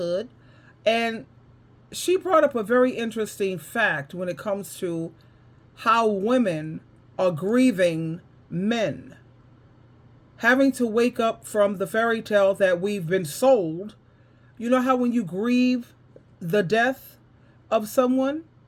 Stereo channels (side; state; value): both; identical; correlation 1.00